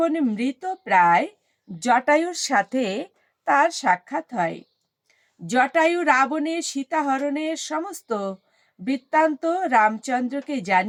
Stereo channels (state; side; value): identical; both; correlation 1.00